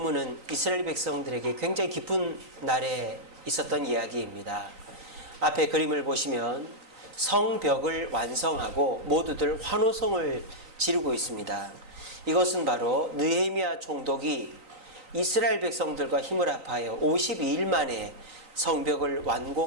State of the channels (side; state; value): left; late; 3.9 ms